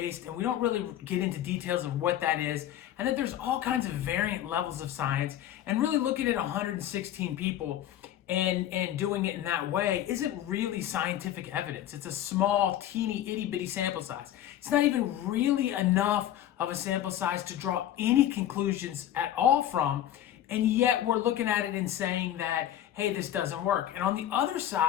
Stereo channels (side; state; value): right; quieter; 11.8 dB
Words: and we don't really get into details of what that is, and that there's all kinds of variant levels of science, and really looking at 116 people and doing it in that way isn't really scientific evidence. It's a small, teeny, itty-bitty sample size. It's not even really enough of a sample size to draw any conclusions at all from. And yet we're looking at it and saying that, hey, this doesn't work. And on the other